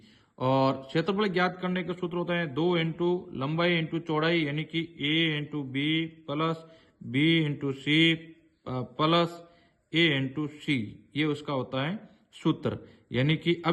और क्षेत्रफल ज्ञात करने का सूत्र होता है 2 इंटू लंबाई इंटू चौड़ाई, यानी कि a into B plus b into C plus a into C, ये उसका होता है सूत्र। यानी कि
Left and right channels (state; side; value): identical; both; correlation 1.00